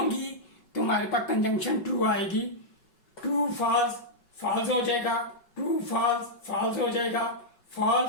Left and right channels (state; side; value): late; right; 5.3 ms